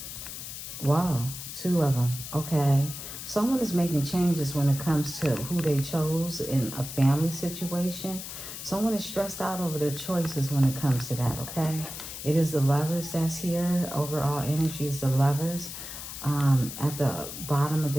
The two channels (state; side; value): noise; left; hiss, 9 dB below the sound